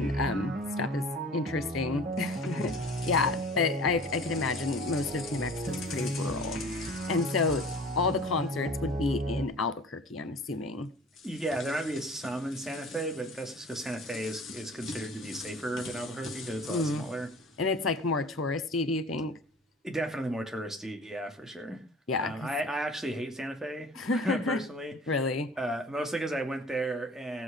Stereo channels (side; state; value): both; normal; correlation 0.44